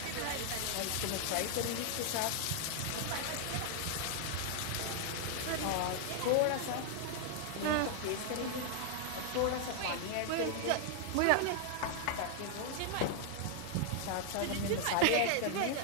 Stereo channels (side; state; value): both; different; correlation 0.00